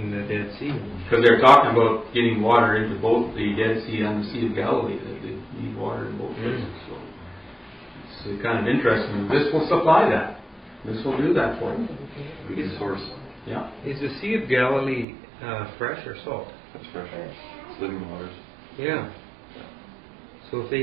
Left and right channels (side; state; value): left; drops out; at 15.1 s